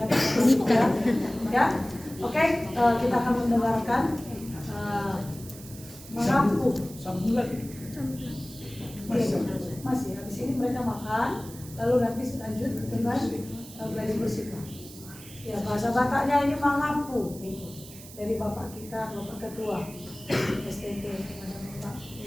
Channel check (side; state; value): right; noise; hiss, 17 dB below the sound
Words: tangan juga. Ya, oke. Kita akan mendengarkan mengaku. Sambung lagi. Masih. Habis ini mereka makan, lalu nanti lanjut dengan belajar bersikap. Ya, bahasa Bataknya ini mengaku. Dari Bapak kita, Bapak Ketua STT, Bapak